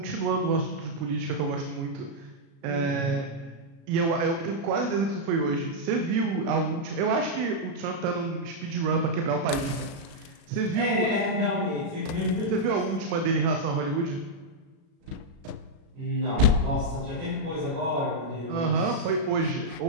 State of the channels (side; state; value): left; late; 36 ms